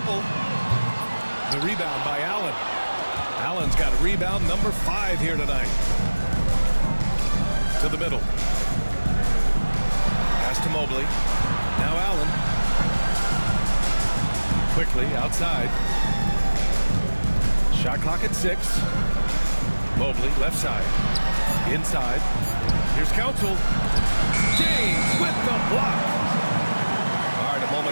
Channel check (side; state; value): both; inverted; correlation -1.00